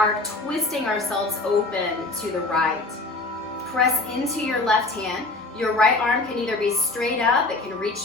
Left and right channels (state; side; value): quieter; right; 3.2 dB